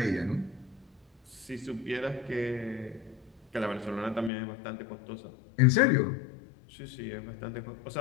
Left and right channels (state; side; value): drops out; right; at 4.3 s